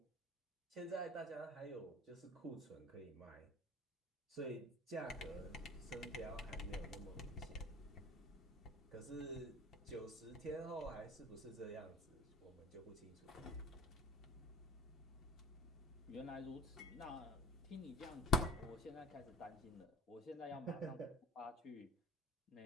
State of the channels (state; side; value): normal; both; correlation 0.38